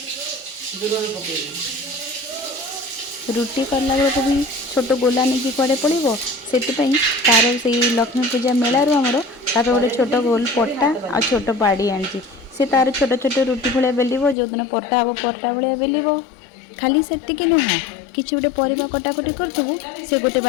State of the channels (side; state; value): right; drops out; at 14.4 s